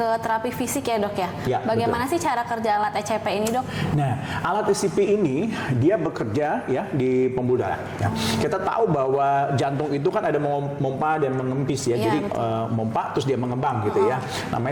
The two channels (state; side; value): identical; both; correlation 1.00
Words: terapi fisik ya, dok ya? Ya, bagaimana betul. sih cara kerja alat ECP ini, dok? Nah, alat ECP ini dia bekerja ya di pembuluh darah. Ya. Kita tahu bahwa jantung itu kan ada memompa dan mengempis ya. Jadi memompa terus dia mengembang gitu ya.